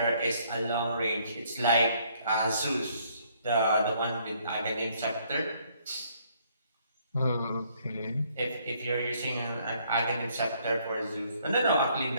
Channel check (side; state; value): both; inverted; correlation -0.66